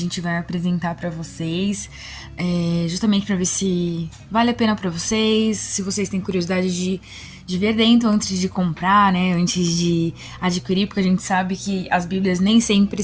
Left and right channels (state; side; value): identical; both; correlation 1.00